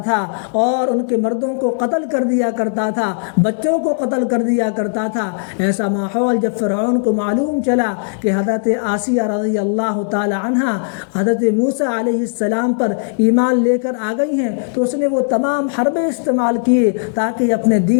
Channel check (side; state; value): right; silent; digital silence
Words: تھا اور ان کے مردوں کو قتل کر دیا کرتا تھا، بچوں کو قتل کر دیا کرتا تھا۔ ایسا ماحول جب فرعون کو معلوم چلا کہ حضرت آسیہ رضی اللہ تعالی عنہا حضرت موسیٰ علیہ السلام پر ایمان لے کر آ گئی ہیں، تو اس نے وہ تمام حربے استعمال کیے تاکہ اپنے